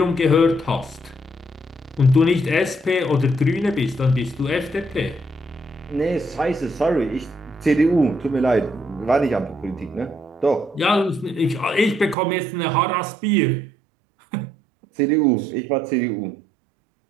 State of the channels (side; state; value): left; drops out; at 12.2 s